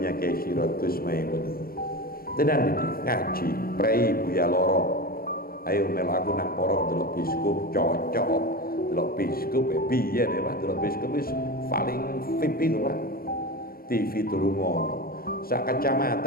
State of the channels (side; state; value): right; late; 0.43 ms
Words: Kiai Sirot Gus Maimun. Tenan iki ngaji, prei Buya Loro. Ayo melu aku nang porong delok biskup cocok. Delok biskup piye ya Pak, delok biskup wis paling VIP lho Pak. TV durung ngono. Sak